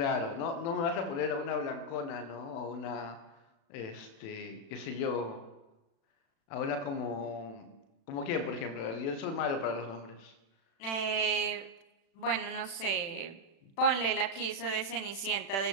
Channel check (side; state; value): right; late; 36 ms